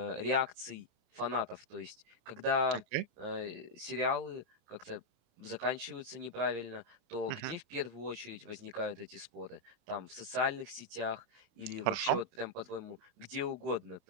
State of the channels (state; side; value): late; left; 28 ms